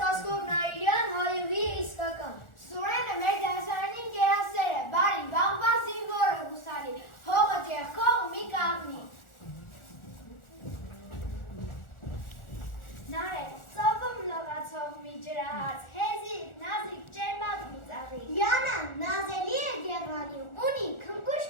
Վասկով Նայիրյան, հայուհի իսկական։ Սուրենը մեր դասարանին գերասեր է, բարի, բաղբա զինվորը հուսալի, հողը ձեռքով մի կաղնի։ Նարե, ծովում լողացող մի ջրահաց, հեզիկ, նազիկ, ջերմակ մի ծաղի։ Յանան նազելի է գեղանի, ունի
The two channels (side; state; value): right; late; 1.4 ms